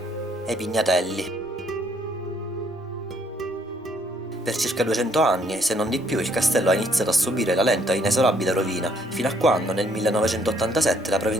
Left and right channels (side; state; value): both; normal; correlation 0.67